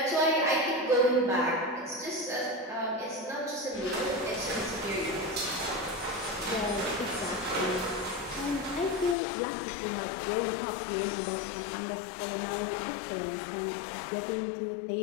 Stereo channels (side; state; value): right; drops out; at 9.2 s